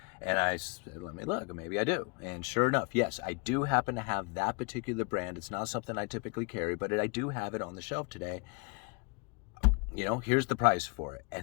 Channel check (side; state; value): right; quieter; 32.2 dB